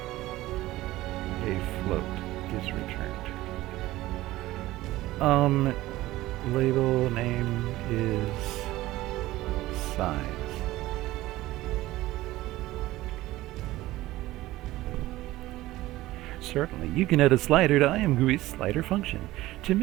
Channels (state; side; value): quieter; left; 17.0 dB